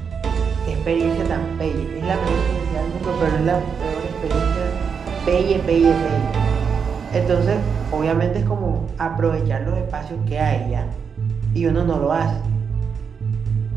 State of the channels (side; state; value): left; quieter; 6.4 dB